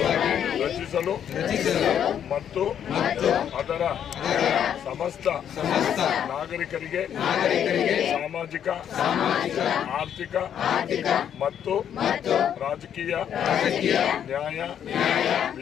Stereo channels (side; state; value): right; quieter; 9.2 dB